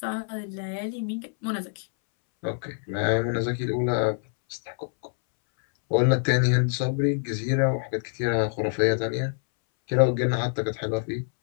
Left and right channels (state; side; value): silent; right; 61 dB below the other